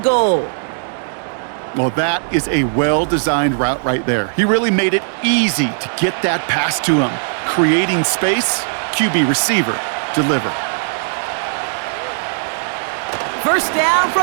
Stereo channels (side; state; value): left; silent; digital silence